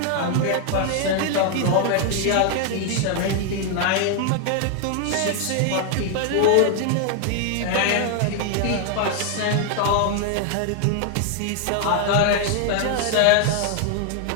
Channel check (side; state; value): both; different; correlation 0.00